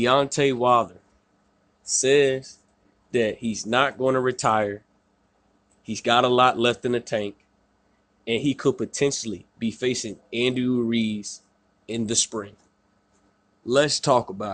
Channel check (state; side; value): identical; both; correlation 1.00